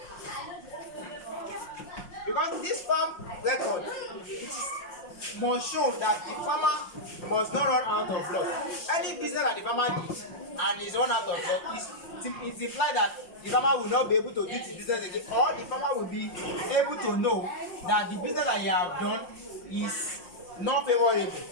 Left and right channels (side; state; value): right; late; 5.6 ms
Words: Because this farm record, it must show that the farmer must not run out of loss. Any business that the farmer did and is run out of loss, it implies that the farmer will not be able to do his business again, or the farmer will be able to know that the business that he have done is not favorable.